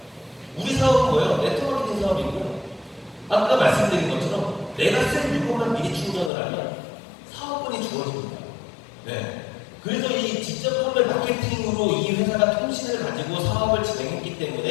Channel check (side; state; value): right; drops out; at 6.3 s